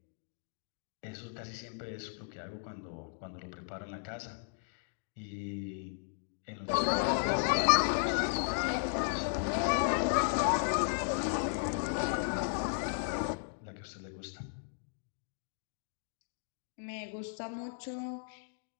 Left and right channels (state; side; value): silent; right; digital silence